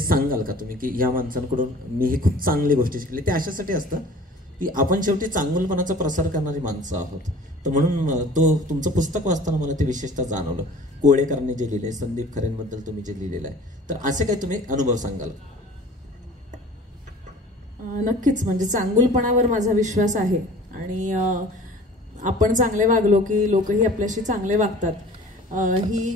का तुम्ही, की या माणसांकडून मी ही खूप चांगली गोष्टी शिकली. ते अशासाठी असतं की आपण शेवटी चांगुलपणाचा प्रसार करणारी माणसं आहोत. तर म्हणून तुमचं पुस्तक वाचताना मला ते विशेषतः जाणवलं. कोळेकरांनी जे लिहिले, संदीप खरेंबद्दल तुम्ही जे लिहिलेलं आहे, तर असे काही तुम्ही अनुभव सांगाल? नक्कीच, म्हणजे चांगुलपणावर माझा विश्वास आहे, आणि आपण चांगले वागलो की लोकही आपल्याशी चांगले वागतात. ही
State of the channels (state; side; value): normal; both; correlation 0.46